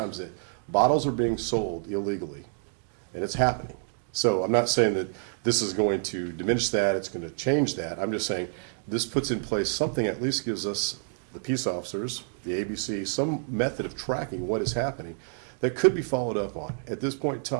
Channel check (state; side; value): silent; left; digital silence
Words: that bottles are being sold illegally, and it's happening. So I'm not saying that this is going to diminish that, it's going to change that. I'm just saying this puts in place something that at least gives us, the peace officers, the ABC, some method of tracking what is happening that could be followed up on. At this point in